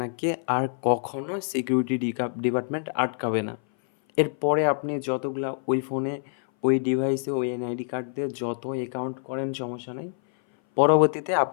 আর কখনো সিকিউরিটি ডিপার্টমেন্ট আটকাবে না। এরপরে আপনি যতগুলা ওই ফোনে, ওই ডিভাইসে, ওই এনআইডি কার্ড দিয়ে যত অ্যাকাউন্ট করেন সমস্যা নাই। পরবর্তীতে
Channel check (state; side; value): silent; right; 58 dB below the other